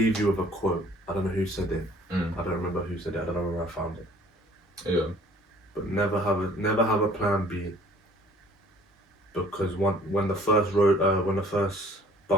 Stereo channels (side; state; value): both; normal; correlation 0.54